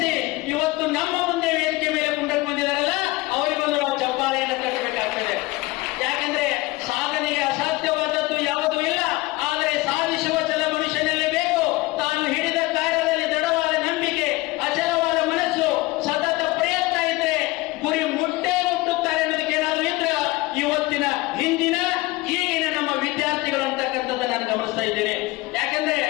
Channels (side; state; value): right; quieter; 21.0 dB